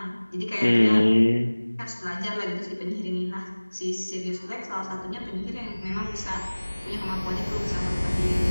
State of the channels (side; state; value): both; inverted; correlation -1.00